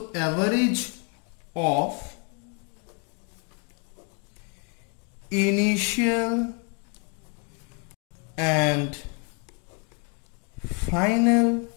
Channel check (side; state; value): right; quieter; 34.5 dB